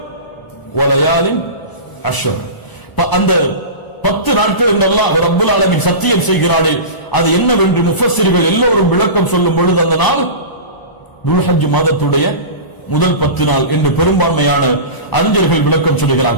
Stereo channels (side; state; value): right; late; 1.0 ms